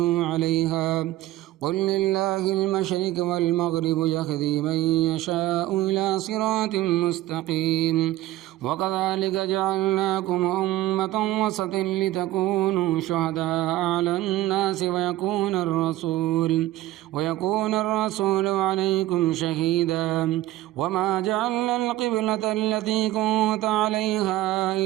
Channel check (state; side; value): quieter; left; 15.5 dB